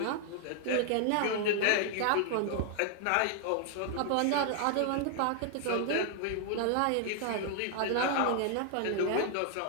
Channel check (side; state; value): both; different; correlation 0.00